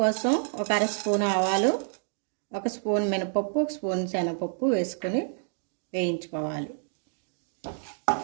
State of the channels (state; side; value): silent; left; digital silence